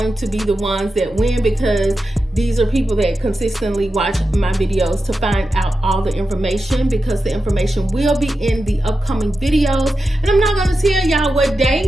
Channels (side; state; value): both; normal; correlation 0.91